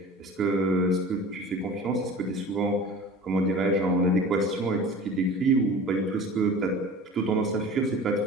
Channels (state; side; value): normal; both; correlation 0.39